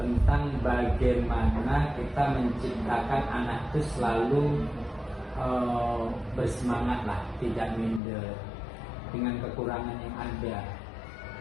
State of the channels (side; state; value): right; drops out; at 8.0 s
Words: tentang bagaimana kita menciptakan anak itu selalu bersemangat lah, tidak minder dengan kekurangan yang ada.